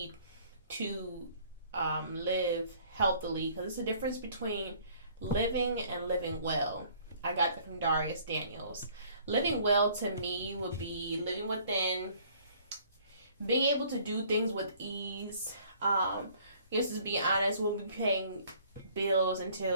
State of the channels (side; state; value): both; inverted; correlation -0.57